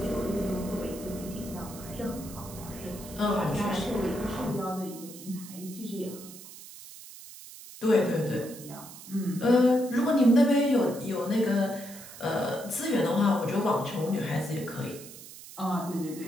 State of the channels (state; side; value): noise; right; hiss, 15 dB below the sound